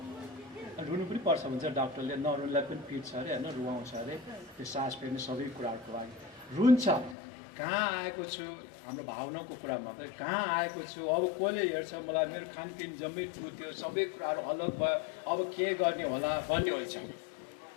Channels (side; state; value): right; drops out; at 7.2 s